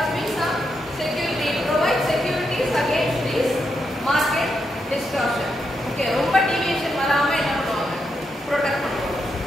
be some security. Provide securities against this market distortion. Okay, ரொம்ப deviation வராம என்ன பண்ணுவாங்க, protect பண்ணுவாங்க.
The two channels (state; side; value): normal; both; correlation 0.82